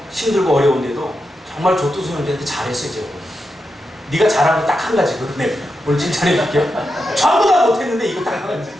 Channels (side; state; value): both; normal; correlation 0.87